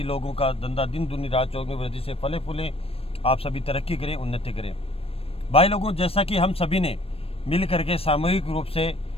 लोगों का धंधा दिन दुनी रात चौगुनी वृद्धि से फले फूलें, आप सभी तरक्की करें, उन्नति करें। भाई लोगों, जैसा कि हम सभी ने मिल करके सामूहिक रूप से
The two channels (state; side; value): late; right; 0.28 ms